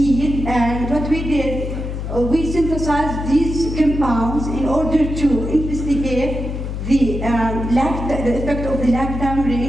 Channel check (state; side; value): noise; left; hum, 5 dB below the sound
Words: and what we did, we synthesized these compounds in order to investigate the effect of the lactam